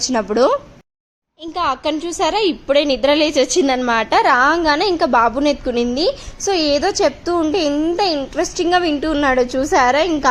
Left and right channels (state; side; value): identical; both; correlation 1.00